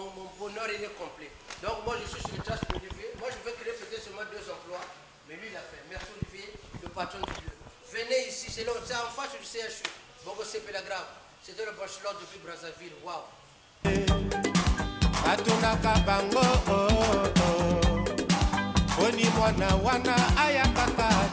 bonheur il est complet. Donc moi je suis sur le trace d'Olivier. Moi je vais créer peut-être seulement 2 emplois. Mais lui il l'a fait. Merci Olivier, le patron du lieu. Venez ici, c'est en face du CHU. Bongo c'est Pélagrave. C'était le bachelor depuis Brazzaville. Waouh. Atunaka bango oni mwana wana ayakaka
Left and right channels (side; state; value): both; identical; correlation 1.00